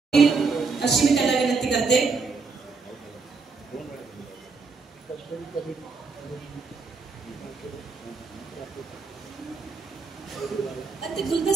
अशी मी त्याला विनंती करते. ते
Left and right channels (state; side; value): quieter; left; 4.5 dB